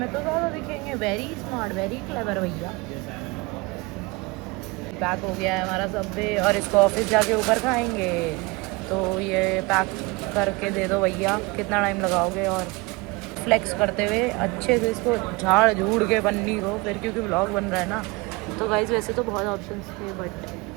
तो ज़्यादा दिखेंगे। वेरी स्मार्ट, वेरी क्लेवर भैया। पैक हो गया है हमारा सब्वे, और इसको ऑफिस जाके ऊपर खाएंगे। तो ये पैक करके दे दो भैया, कितना टाइम लगाओगे। और फ्लेक्स करते हुए अच्छे से इसको झाड़ झूड़ के पन्नी को, फिर क्योंकि व्लॉग बन रहा है ना। तो गाइस वैसे तो बहुत ऑप्शंस थे, but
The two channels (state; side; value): quieter; left; 25.3 dB